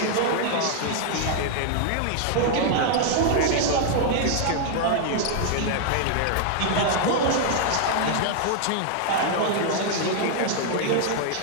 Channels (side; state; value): both; different; correlation 0.00